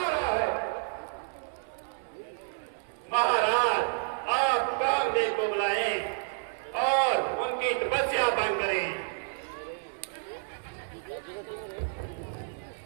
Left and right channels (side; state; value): left; silent; 58 dB below the other